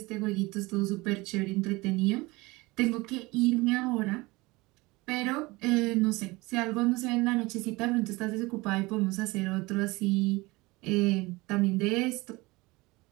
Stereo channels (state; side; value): quieter; left; 22.6 dB